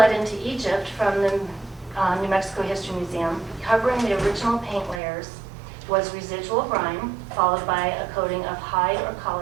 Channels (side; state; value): left; drops out; at 5.0 s